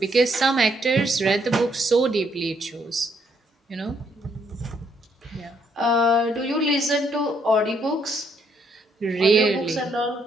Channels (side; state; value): both; normal; correlation 0.71